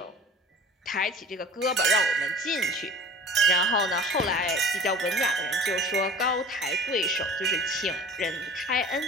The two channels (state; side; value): normal; both; correlation 0.42